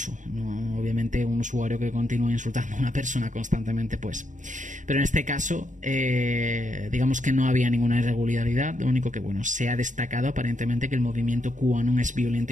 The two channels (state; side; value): late; left; 0.36 ms